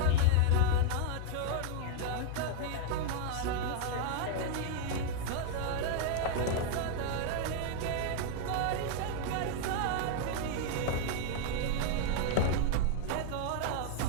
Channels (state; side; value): different; both; correlation 0.00